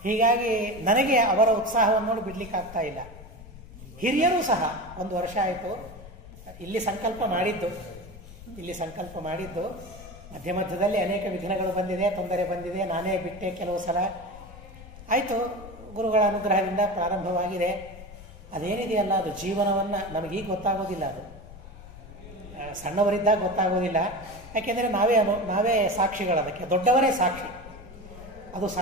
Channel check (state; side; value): noise; left; rumble, 17 dB below the sound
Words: ಹೀಗಾಗಿ ನನಗೆ ಅವರ ಉತ್ಸಾಹವನ್ನು ನೋಡಿ ಬಿಡ್ಲಿಕ್ಕಾಗ್ತಾ ಇಲ್ಲ. ಹಿರಿಯರೂ ಸಹ 1 ವರ್ಷ ಆಯಿತು ಇಲ್ಲಿ ಸಂಕಲ್ಪ ಮಾಡಿದ್ದು. ಮಧ್ಯ ಮಧ್ಯದಲ್ಲಿ ಅನೇಕ ವಿಘ್ನಗಳು ಬಂದಿದೆ, ತೊಂದರೆ ಬಂದಿದೆ, ನಾನೇ ಬಿಟ್ಟೆ ಕೆಲವು ಸಲ. ಆಯಿತು, ಗುರುಗಳ ಅನುಗ್ರಹದಿಂದ ಪ್ರಾರಂಭವಾಗಿದೆ. ಅದೇನಿದೆಯಲ್ಲ ಅದು ಜೀವನವನ್ನು ನಮಗೀಗ ಗೊತ್ತಾಗೋದಿಲ್ಲ. ಅದು ಸಣ್ಣವರಿದ್ದಾಗ ಗೊತ್ತಾಗೋದಿಲ್ಲ. ಯಾಕೆಂದರೆ ನಾವೇ ಸಾಕ್ಷಿಗಳದಕ್ಕೆ, ದೊಡ್ಡವರೇ ಸಾಕ್ಷಿ. ಅದು